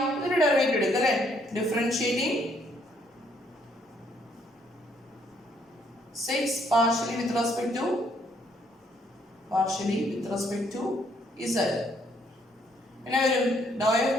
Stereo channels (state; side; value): normal; both; correlation 0.69